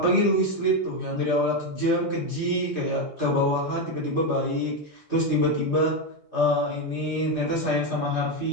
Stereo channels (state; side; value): late; left; 2.5 ms